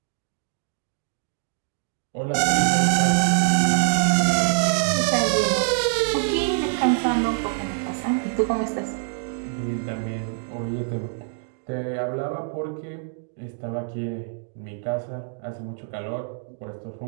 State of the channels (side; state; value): left; silent; digital silence